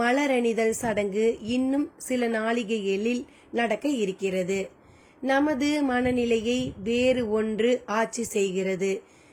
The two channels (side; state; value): both; identical; correlation 1.00